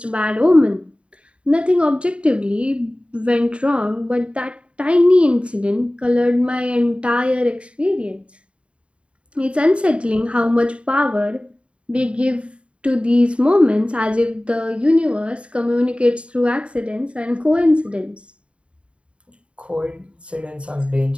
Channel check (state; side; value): late; left; 0.059 ms